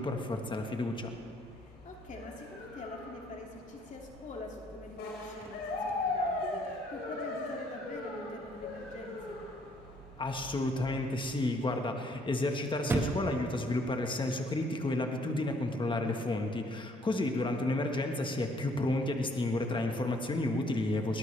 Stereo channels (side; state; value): both; normal; correlation 0.65